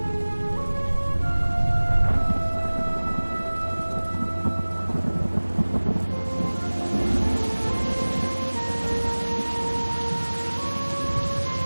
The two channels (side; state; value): both; inverted; correlation -1.00